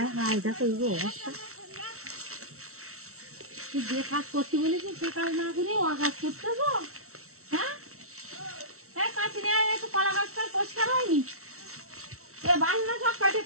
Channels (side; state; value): left; late; 0.63 ms